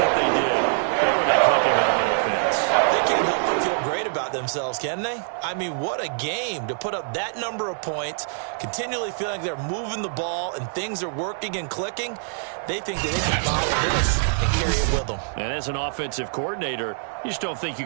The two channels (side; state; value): left; silent; 58 dB below the other